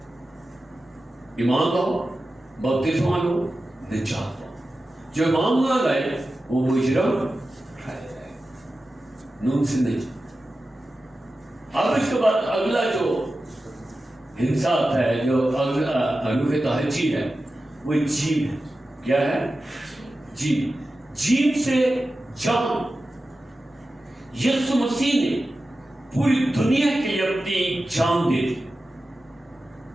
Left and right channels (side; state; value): both; normal; correlation 0.93